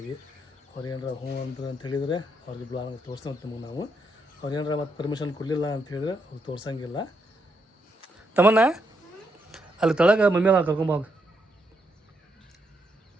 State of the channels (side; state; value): both; normal; correlation 0.78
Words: ಅವ್ರು ಏನಾರ ಹ್ಞೂ ಅಂದ್ರೆ ಅಂತ ಹೇಳಿದರೆ ಅವ್ರಿಗೆ ಬ್ಲಾಗ್ ತೋರಿಸ್ತೀವಿ ನಿಮಗೆ ನಾವು ಅವ್ರು ಏನಾರ ಮತ್ತೆ ಪರ್ಮಿಷನ್ ಕೊಡಲಿಲ್ಲ ಅಂತ ಹೇಳಿದ್ರೆ ಅವ್ರು ತೋರ್ಸಂಗಿಲ್ಲ ತಮ್ಮನ್ನ ಅಲ್ಲಿ ತಳಗ ಮಮ್ಮಿ ಅಲ್ಲ ಕರ್ಕೊಂಬೋಗ